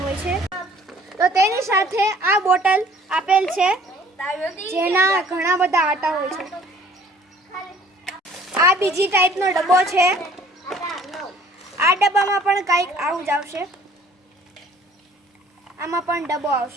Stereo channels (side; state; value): both; normal; correlation 0.54